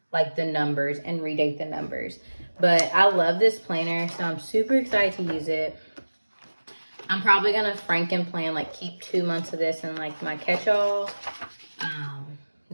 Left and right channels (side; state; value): both; inverted; correlation -1.00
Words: like the numbers and redate the numbers. But I love this planner, so I'm super excited to use it. I'm probably gonna Franken plan, like keep 2 months of this in like my catch-all.